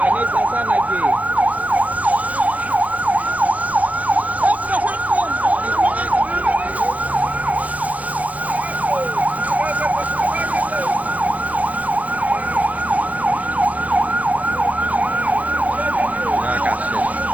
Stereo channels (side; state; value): left; late; 0.073 ms